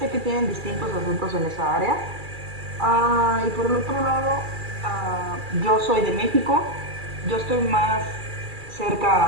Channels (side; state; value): left; late; 2.3 ms